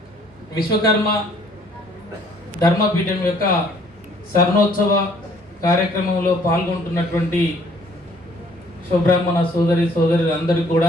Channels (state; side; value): normal; both; correlation 0.60